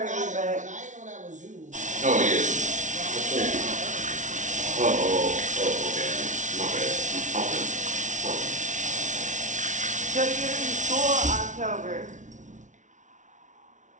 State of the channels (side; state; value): left; late; 0.36 ms